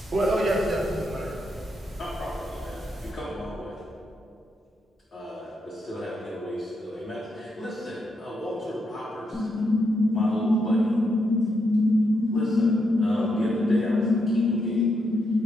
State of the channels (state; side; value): normal; both; correlation 0.80